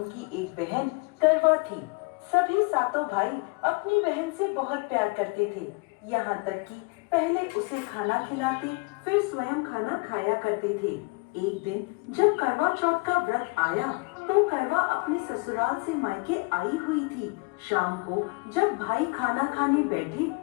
एक बहन करवा थी। सभी सातों भाई अपनी बहन से बहुत प्यार करते थे, यहाँ तक कि पहले उसे खाना खिलाते, फिर स्वयं खाना खाया करते थे। एक दिन जब करवा चौथ का व्रत आया, तो करवा अपने ससुराल से मायके आई हुई थी। शाम को जब भाई खाना खाने बैठे,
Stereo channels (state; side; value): quieter; right; 29.0 dB